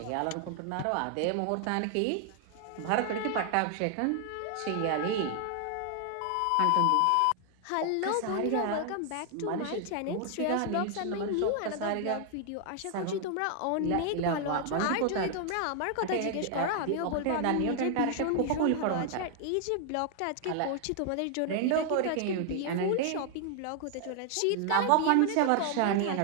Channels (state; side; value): different; both; correlation 0.00